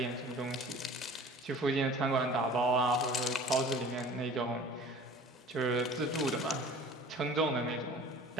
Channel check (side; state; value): both; normal; correlation 0.44